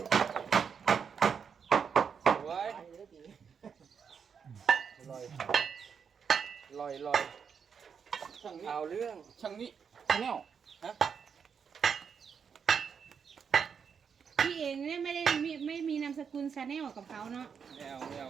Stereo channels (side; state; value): left; quieter; 6.7 dB